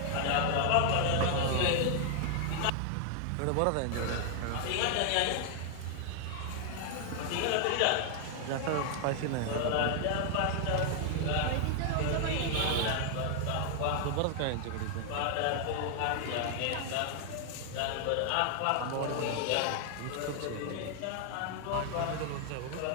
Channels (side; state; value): both; different; correlation 0.00